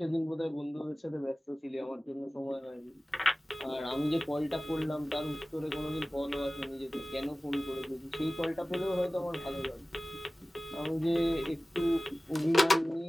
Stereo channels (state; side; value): normal; both; correlation 0.97